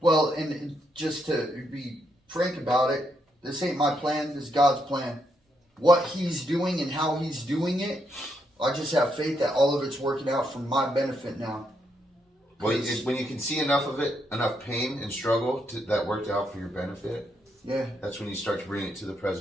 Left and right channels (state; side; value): normal; both; correlation 0.78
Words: and just to be frank about it, this ain't my plan, this is God's plan. What he's doing and how he's doing it, I just have faith that all of it's working out for my benefit now. Well, when you can see enough of it, enough pain and struggle that worked out for your benefit, Yeah. that's when you start to bring it to the